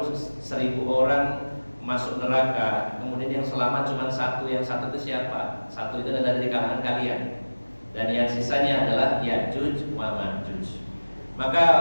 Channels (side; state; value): both; inverted; correlation -1.00